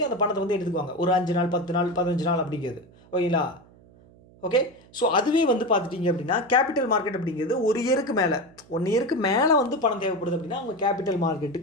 அந்த பணத்தை வந்து எடுத்துக்குவாங்க. ஒரு 5 நாள், 10 நாள், 15 நாள் அப்படிங்கிறது. ஓகேங்களா, ஓகே. ஸோ அதுவே வந்து பார்த்துட்டிங்க அப்படின்னா கேபிட்டல் மார்க்கெட் அப்படிங்கிறது 1 இயருக்கு மேலே, 1 இயருக்கு மேலே வந்து பணம் தேவைப்படுது அப்படின்னா அவங்க கேபிட்டல்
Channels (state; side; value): noise; right; hum, 26 dB below the sound